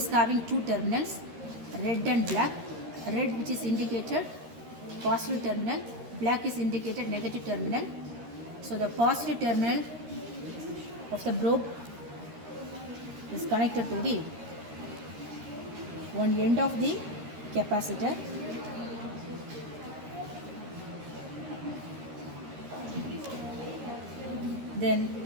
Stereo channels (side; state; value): left; late; 13 ms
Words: having 2 terminals, red and black. Red which is indicated positive terminal, black is indicated negative terminal. So the positive terminal of the probe is connected to the one end of the capacitor.